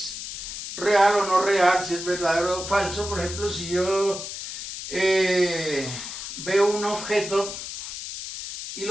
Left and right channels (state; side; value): noise; left; hiss, 8 dB below the sound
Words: real o no real, si es verdadero o falso. Por ejemplo, si yo veo un objeto y